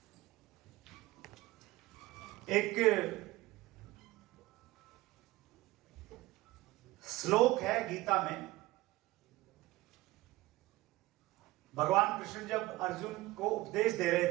एक श्लोक है गीता में, भगवान कृष्ण जब अर्जुन को उपदेश दे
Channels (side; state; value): left; quieter; 18.7 dB